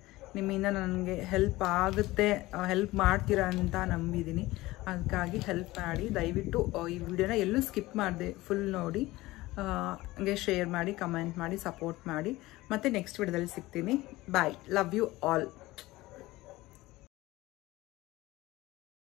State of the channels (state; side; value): quieter; right; 18.9 dB